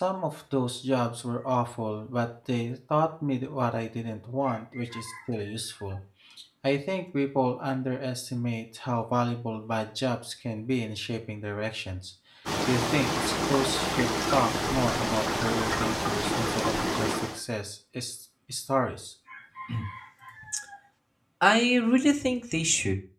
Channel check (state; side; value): identical; both; correlation 1.00